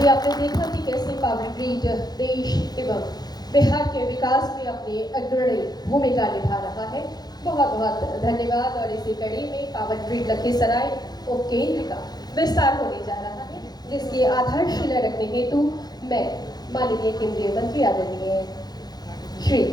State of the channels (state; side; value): late; right; 0.19 ms